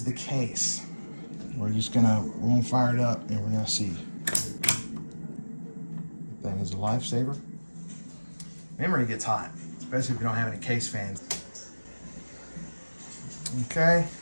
the case. We're gonna fire it up and we're gonna see. Thing is a lifesaver. Memory gets hot, especially if you don't have any case fans. Okay,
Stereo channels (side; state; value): both; inverted; correlation -1.00